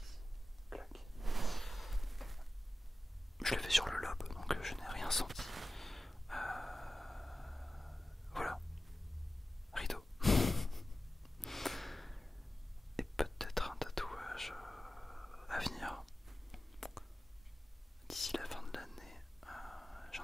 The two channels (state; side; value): normal; both; correlation 0.95